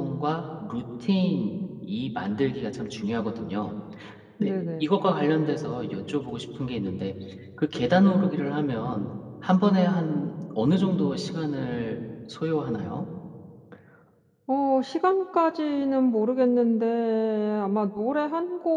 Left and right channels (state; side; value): identical; both; correlation 1.00